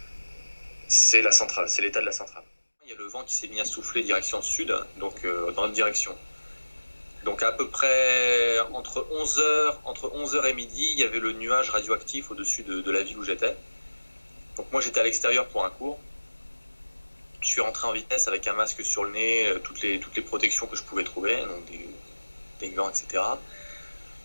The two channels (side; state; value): both; inverted; correlation -1.00